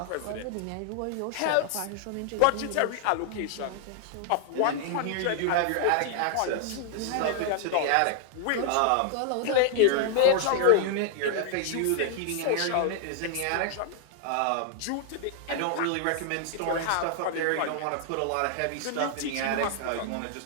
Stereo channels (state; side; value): different; both; correlation 0.00